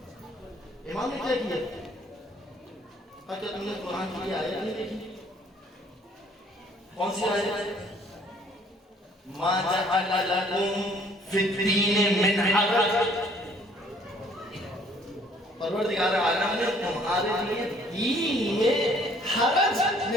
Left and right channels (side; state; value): both; normal; correlation 0.59